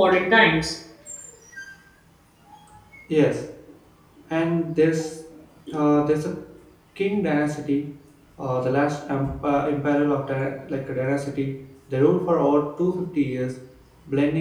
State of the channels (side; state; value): both; identical; correlation 1.00